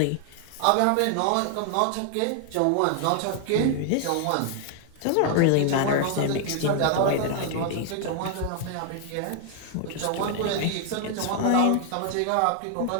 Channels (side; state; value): both; different; correlation 0.00